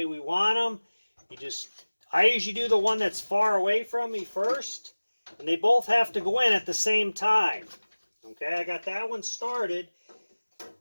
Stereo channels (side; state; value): both; inverted; correlation -1.00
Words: we want them. I usually do the one that's far away from me first, and they both have to go in at the same time. Okay, I got that one started.